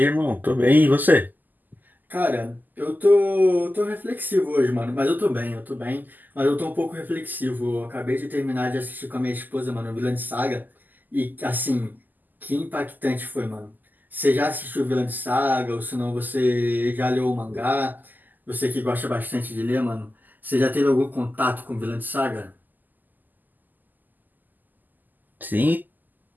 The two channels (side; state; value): left; late; 0.085 ms